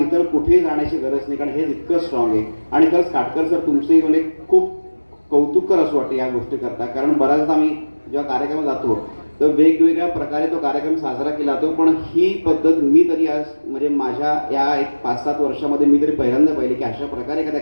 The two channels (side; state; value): both; inverted; correlation -1.00